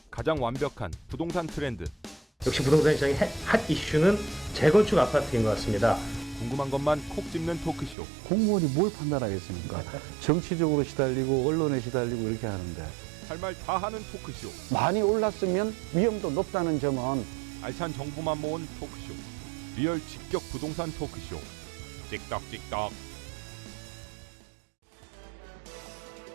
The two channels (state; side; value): drops out; left; at 8.0 s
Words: 가장 완벽한 부동산 트렌드. 역시 부동산 시장의 핫 이슈는 재건축 아파트인 것 같습니다. 궁금한 것만 콕 집는 토크쇼. 공무원이 뭘 판단하겠습니까? 정치적으로 시달리고 언론에 시달리고 이렇게 하는데 할 말 다 하는 토크쇼. 많이 올랐으면 위험도 높다는 점은 알찬 정보만 모은 토크쇼. 리얼 직격 부동산 토크쇼. 찍덕찍덕. 자, 이번